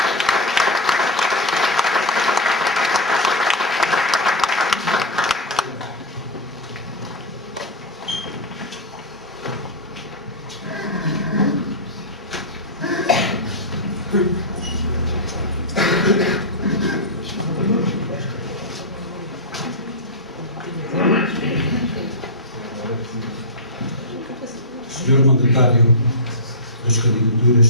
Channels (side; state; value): both; normal; correlation -0.06